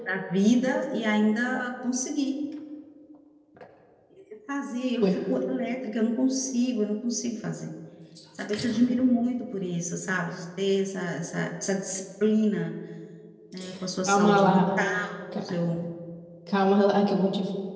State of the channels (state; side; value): identical; both; correlation 1.00